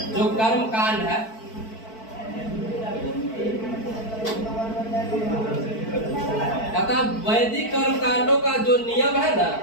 जो कर्म कांड है, कहता वैदिक कर्म कांडों का जो नियम है ना,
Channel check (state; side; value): late; right; 4.5 ms